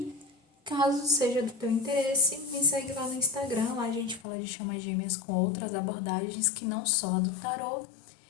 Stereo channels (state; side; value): drops out; right; at 4.2 s